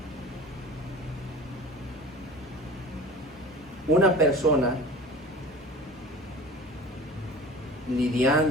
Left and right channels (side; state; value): both; normal; correlation 0.39